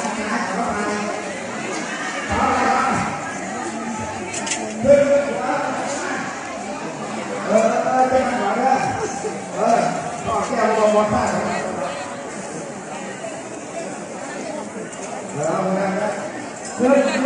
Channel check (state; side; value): identical; both; correlation 1.00